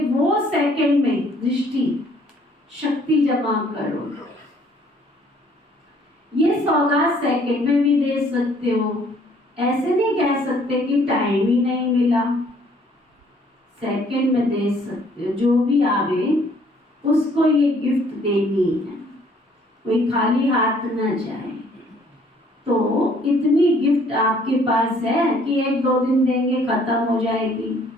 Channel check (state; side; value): normal; both; correlation 0.61